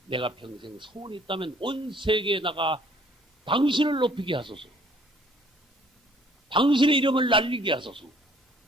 내가 평생 소원이 있다면 온 세계에 나가 당신을 높이게 하소서. 당신의 이름을 날리게 하소서.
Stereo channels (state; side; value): normal; both; correlation 0.59